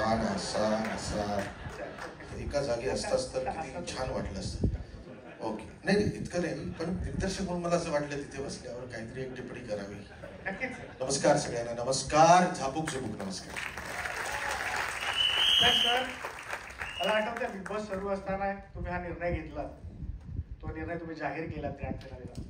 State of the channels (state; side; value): identical; both; correlation 1.00